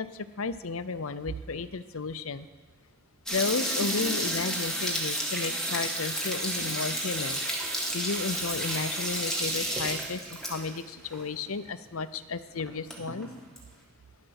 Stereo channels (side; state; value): both; normal; correlation 0.04